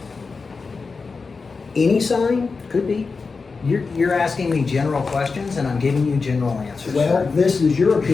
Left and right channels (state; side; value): quieter; right; 4.5 dB